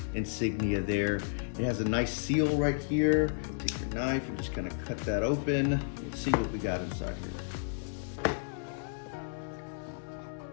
insignia there. It has a nice seal right here. Take your knife and just kind of cut that open. Let's see what we got inside here.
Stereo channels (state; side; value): silent; right; digital silence